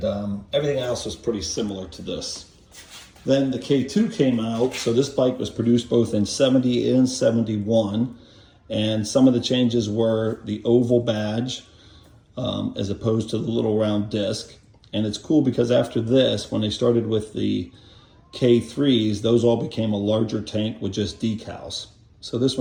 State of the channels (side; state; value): both; identical; correlation 1.00